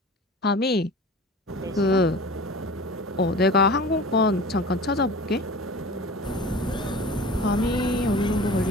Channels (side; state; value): both; normal; correlation 0.38